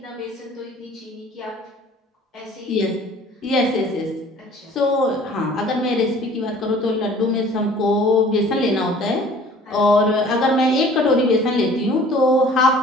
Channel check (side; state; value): both; normal; correlation 0.50